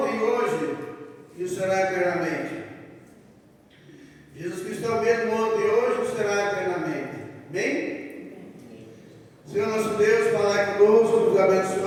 e hoje, e o será eternamente. Jesus Cristo é o mesmo ontem e hoje, e o será eternamente. Bem? Senhor nosso Deus, falai conosco, nos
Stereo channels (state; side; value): identical; both; correlation 1.00